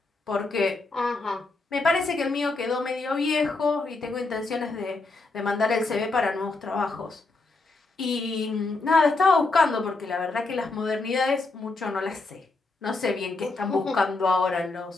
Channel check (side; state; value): right; quieter; 3.5 dB